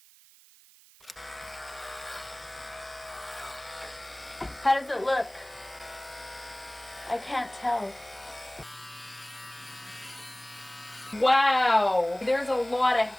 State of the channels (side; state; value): right; noise; hiss, 24 dB below the sound